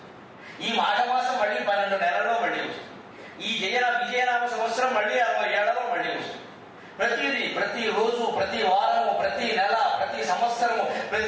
ఈ మాఘమాసం మళ్ళీ 12 నెలల్లో మళ్ళీ వస్తుంది. ఈ విజయనామ సంవత్సరం మళ్ళీ 60 ఏళ్లలో మళ్ళీ వస్తుంది. ప్రతిదీ, ప్రతి రోజు, ప్రతి వారము, ప్రతి నెల, ప్రతి సంవత్సరము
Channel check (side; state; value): both; identical; correlation 1.00